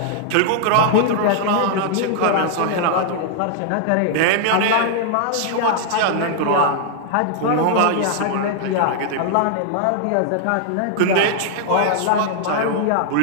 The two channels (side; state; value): both; different; correlation 0.00